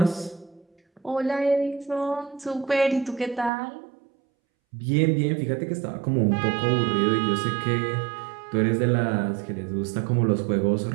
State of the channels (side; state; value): left; drops out; at 3.5 s